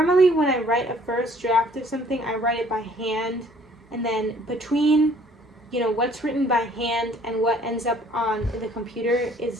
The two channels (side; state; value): both; normal; correlation 0.58